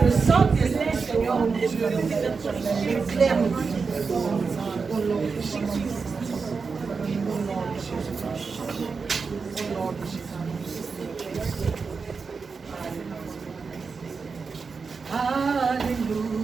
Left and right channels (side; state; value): left; quieter; 5.0 dB